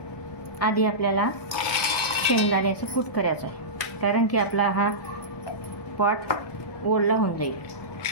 आधी आपल्याला शेंगदाण्याचं कूट करायचं आहे, कारण की आपला हा पॉट ओला होऊन जाईल.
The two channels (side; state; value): right; late; 1.2 ms